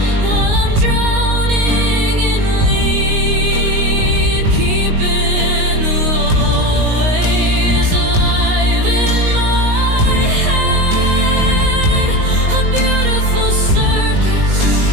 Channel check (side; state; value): left; late; 19 ms